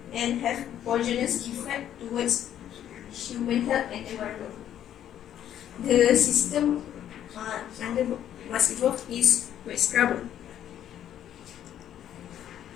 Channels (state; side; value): quieter; right; 10.7 dB